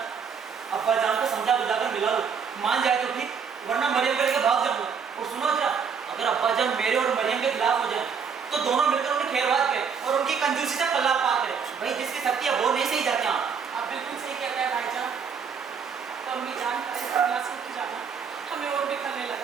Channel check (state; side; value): quieter; left; 6.4 dB